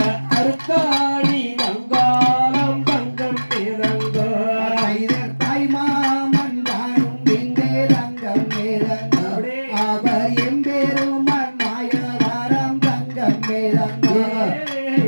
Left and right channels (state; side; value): inverted; both; correlation -1.00